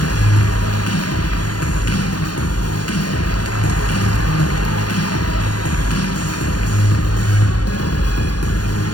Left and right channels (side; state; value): right; late; 0.70 ms